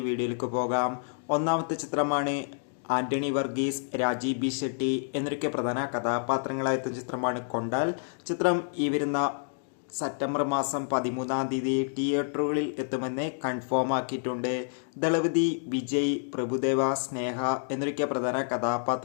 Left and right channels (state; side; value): silent; right; digital silence